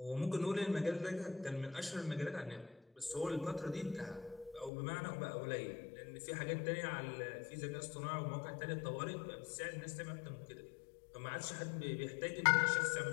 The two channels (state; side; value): drops out; right; at 4.7 s